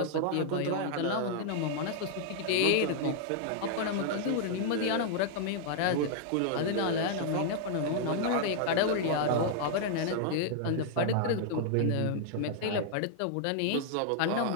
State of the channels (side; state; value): both; different; correlation -0.01